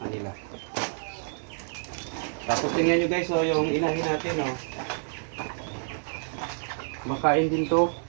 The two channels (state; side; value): silent; left; digital silence